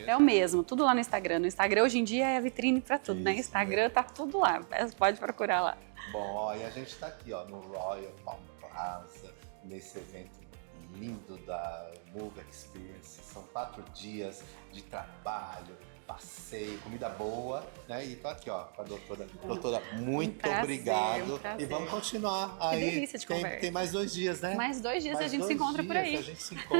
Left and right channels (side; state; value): left; silent; 54 dB below the other